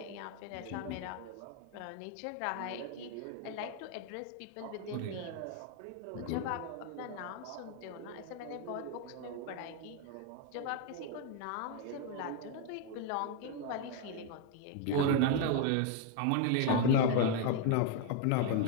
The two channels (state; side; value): different; both; correlation 0.00